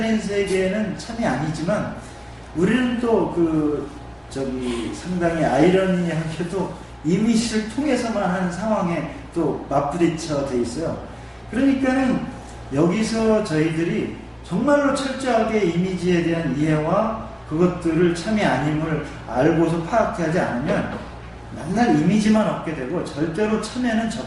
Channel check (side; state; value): both; identical; correlation 1.00